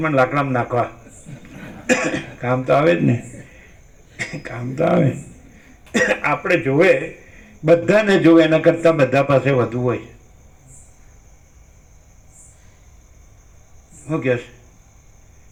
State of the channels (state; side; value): identical; both; correlation 1.00